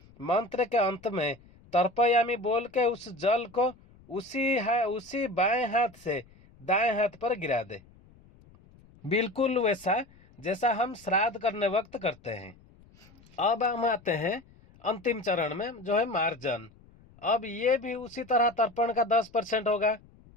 मंत्र के अंत में तर्पयामी बोल के उस जल को उसी बाएं हाथ से दाएं हाथ पर गिरा दे, बिल्कुल वैसा जैसा हम श्राद्ध करने वक्त करते हैं। अब हम आते हैं अंतिम चरण में, जो है मार्जन। अब ये भी उसी तरह तर्पण का 10% होगा।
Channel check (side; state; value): left; noise; rumble, 26 dB below the sound